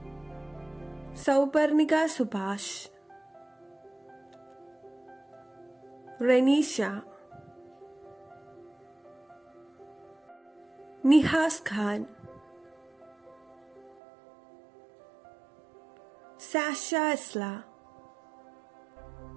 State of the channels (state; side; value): drops out; left; at 14.0 s